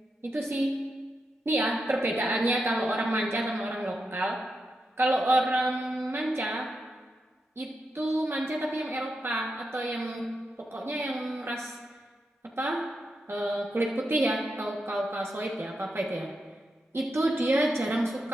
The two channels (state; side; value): normal; both; correlation 0.86